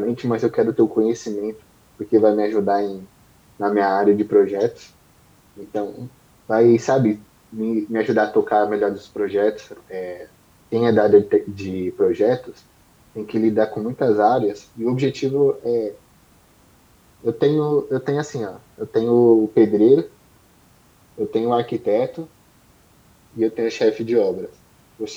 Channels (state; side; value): identical; both; correlation 1.00